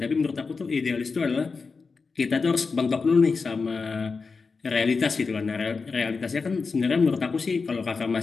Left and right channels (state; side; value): quieter; right; 4.6 dB